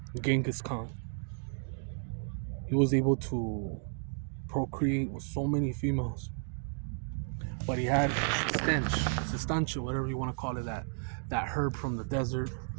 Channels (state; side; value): silent; left; digital silence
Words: Genghis Khan. He was able to procreate with so many females, but he had sustancia, whatever you want to call it, that herb from the desert